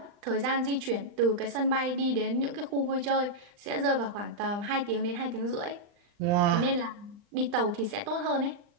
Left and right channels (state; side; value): late; left; 39 ms